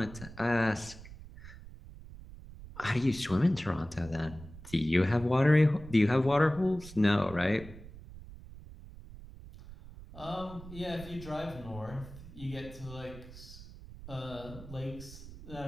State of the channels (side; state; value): right; noise; rumble, 16 dB below the sound